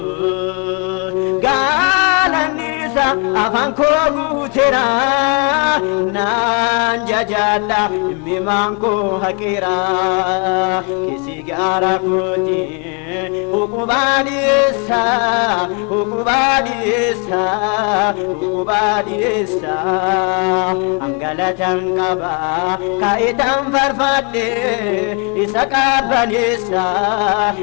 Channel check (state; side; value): quieter; right; 35.4 dB